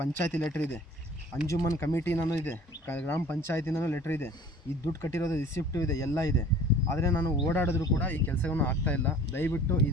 ಲೆಟ್ರ್ ಇದೆ, ಅಂಜುಮನ್ ಕಮಿಟಿನೂ ಇದೆ, ಗ್ರಾಮ ಪಂಚಾಯತಿನೂ ಲೆಟ್ರ್ ಇದೆ, ಈ ದುಡ್ಡು ಕಟ್ಟಿರೋದು ರಿಸಿಪ್ಟು ಇದೆ, ಎಲ್ಲ ಇದೆ. ಆದರೆ ನಾನು ಓಡಾಡಿದ್ರು ಕೂಡ ಈ ಕೆಲಸವನ್ನು ಆಗ್ತಾಯಿಲ್ಲ. ದಯವಿಟ್ಟು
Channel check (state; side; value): normal; both; correlation 0.47